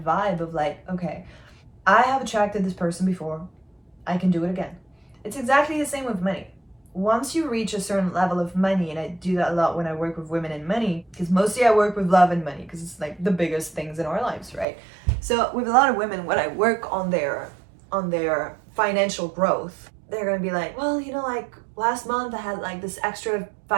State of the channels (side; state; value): left; drops out; at 14.7 s